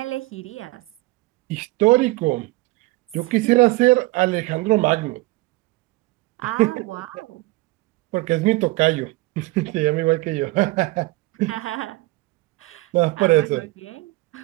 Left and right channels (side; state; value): left; quieter; 21.3 dB